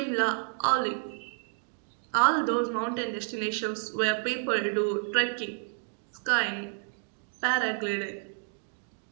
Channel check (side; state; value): left; silent; 58 dB below the other